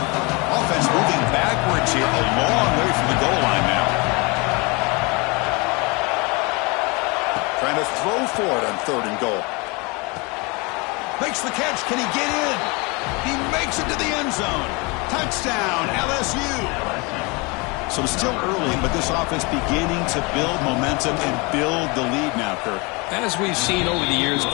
moving backwards here, a long way from the goal line now. Trying to throw for it on 3rd and goal. Makes the catch. Can he get in? He makes it to the end zone. Touchdown, LSU. So it's still early, but this offense beginning to build momentum and build the lead now, Kirk. As we've seen over the years,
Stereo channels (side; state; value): right; quieter; 28.0 dB